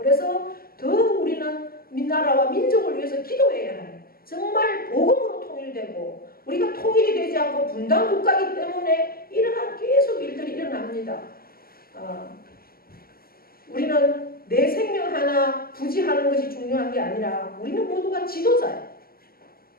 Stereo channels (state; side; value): late; right; 0.43 ms